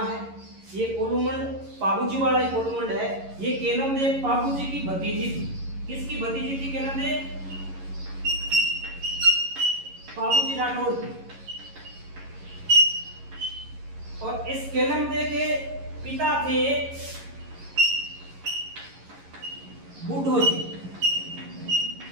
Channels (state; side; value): late; left; 11 ms